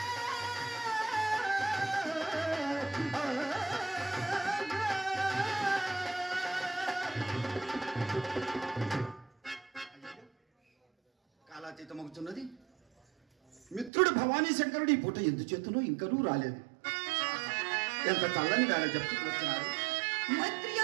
కాలాతీతమవుతున్నది. మిత్రుడు భవానీ శంకరుడు ఈ పూట ఎందుచేతనో ఇంకనూ రాలేదు. ఎంత చల్లని వేళ చెప్తూ వచ్చినారు. మైత్రి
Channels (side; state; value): left; drops out; at 13.9 s